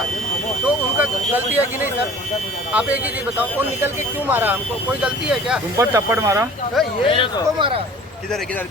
तो उनका गलती है कि नहीं सर? आप एक ही चीज बताओ, वो निकल के क्यों मारा हमको, कोई गलती है क्या? तुम पर थप्पड़ मारा ये इसको मारा, किधर है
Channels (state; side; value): normal; both; correlation 0.47